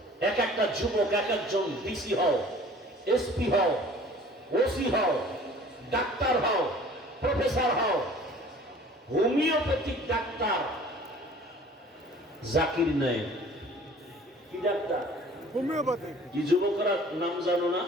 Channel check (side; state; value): both; normal; correlation 0.49